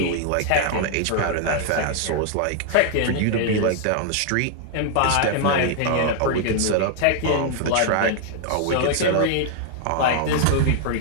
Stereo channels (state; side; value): different; both; correlation 0.00